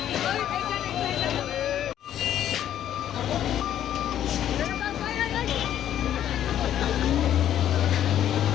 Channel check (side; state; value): right; quieter; 10.9 dB